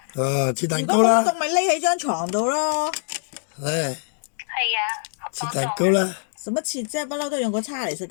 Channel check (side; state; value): right; silent; digital silence